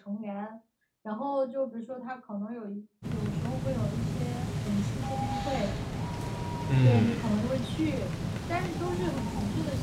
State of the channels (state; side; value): identical; both; correlation 1.00